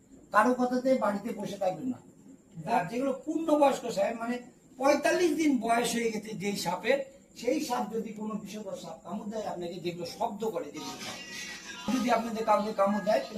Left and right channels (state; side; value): identical; both; correlation 1.00